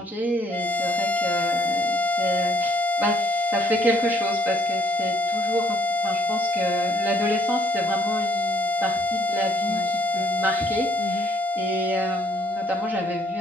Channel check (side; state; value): both; normal; correlation 0.66